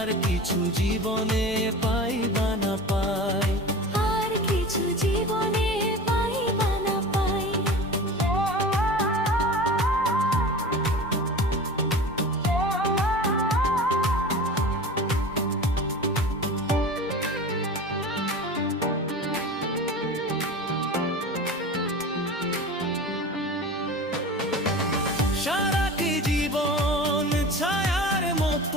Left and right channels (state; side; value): normal; both; correlation 0.34